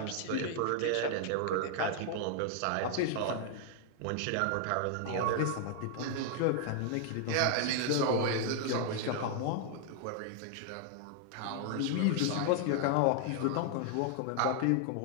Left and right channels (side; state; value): both; different; correlation 0.00